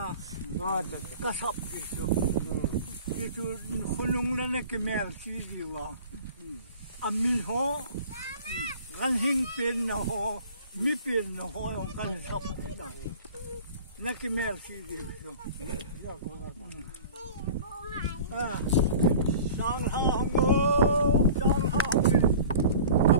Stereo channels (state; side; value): inverted; both; correlation -0.42